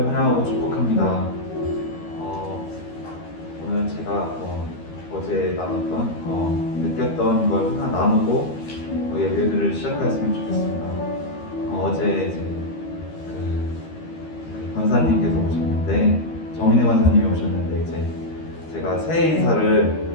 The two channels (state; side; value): late; right; 13 ms